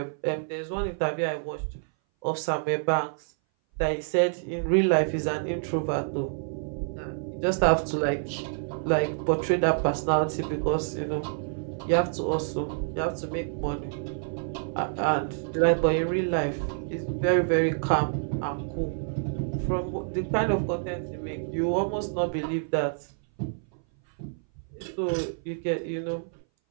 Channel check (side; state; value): left; silent; 58 dB below the other